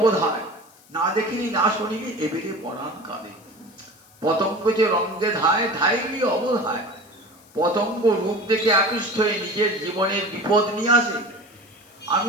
না দেখিনি না শুনিনি এবেরে পরাণ কাঁদে। পতঙ্গ যে রঙ্গে ধায় ধাইলি অবধায়, পতঙ্গ রূপ দেখে আকৃষ্ট হয়ে নিজের জীবনের বিপদ নিয়ে আসে। আমি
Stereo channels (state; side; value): noise; left; hiss, 27 dB below the sound